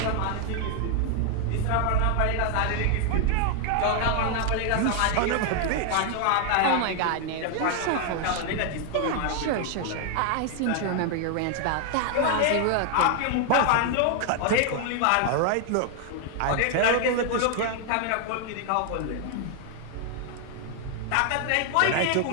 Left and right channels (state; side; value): different; both; correlation 0.00